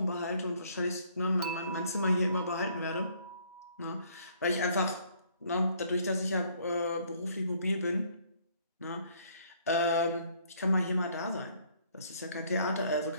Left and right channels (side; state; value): both; inverted; correlation -0.63